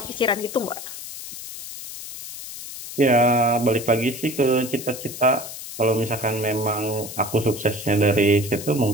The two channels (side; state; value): left; noise; hiss, 11 dB below the sound